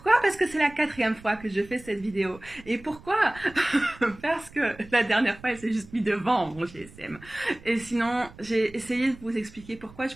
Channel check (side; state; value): right; noise; rumble, 21 dB below the sound